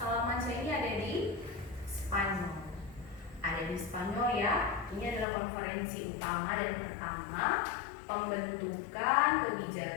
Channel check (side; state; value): right; drops out; at 5.2 s